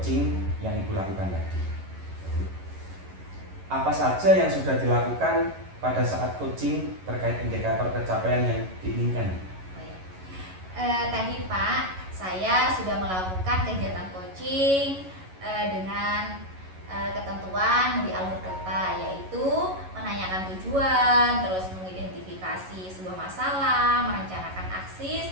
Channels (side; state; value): left; late; 11 ms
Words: yang Ibu lakukan tadi. Apa saja yang sudah dilakukan pada saat coaching terkait indikator pencapaian yang diinginkan? Tadi Pak, saya sudah melakukan kegiatan coaching dengan ketentuan di alur kerta, yaitu menanyakan tujuan, terus mengidentifikasi sebuah masalah, merencanakan aksi,